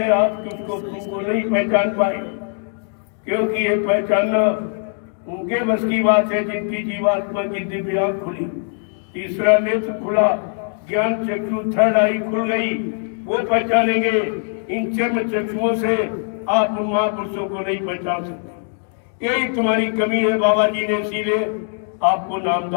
आप उसको नहीं पहचान पाए, क्योंकि ये पहचानना उनके बस की बात है जिनकी जीवात्मा की दिव्य आंख खुली, तीसरा नेत्र खुला, ज्ञान चक्षु थर्ड आई खुल गई, वो पहचानेंगे। इन चर्म चक्षुओं से आप महापुरुषों को नहीं पहचान सकते। यही तुम्हारी कमी है। बाबा जी ने इसीलिए आपको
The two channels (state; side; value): silent; right; 63 dB below the other